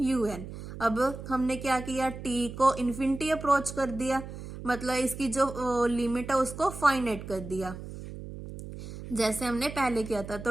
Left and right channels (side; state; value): right; noise; hum, 11 dB below the sound